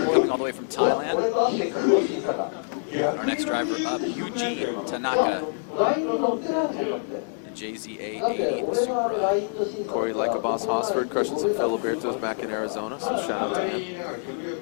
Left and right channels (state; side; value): silent; right; digital silence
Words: all the way from Thailand. Our next driver up, Yuji Tanaka. The JZA80 Supra. Corey Like a Boss Hosford crushing some Filibertos back in Arizona, so shout out to him.